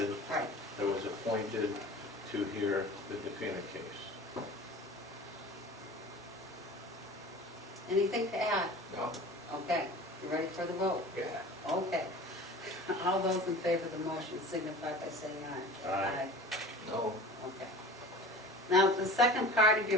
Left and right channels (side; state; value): both; normal; correlation 0.39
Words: that's right. That was appointed to hear the Defina case. Anything to add? No? Okay. You ready for the vote? Yeah. Okay. All those in favor of the motion signify by saying aye. Aye. No, Okay. Now, the second part of